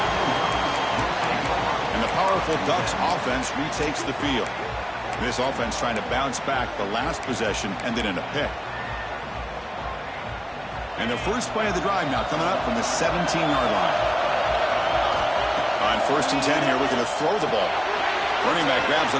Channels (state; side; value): identical; both; correlation 1.00